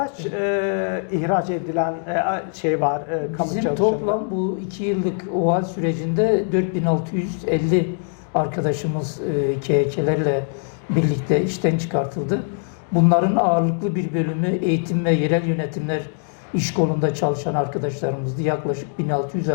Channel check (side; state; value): right; silent; 64 dB below the other